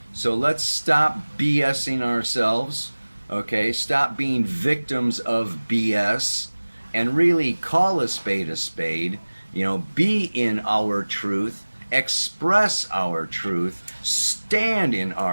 So let's stop BSing ourselves, okay? Stop being victims of BS and really call a spade, you know, be in our truth, express our truth, stand in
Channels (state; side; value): inverted; both; correlation -1.00